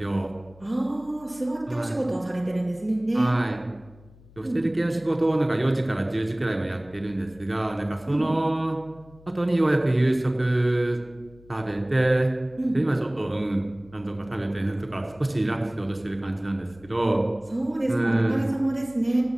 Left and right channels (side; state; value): left; noise; hum, 24 dB below the sound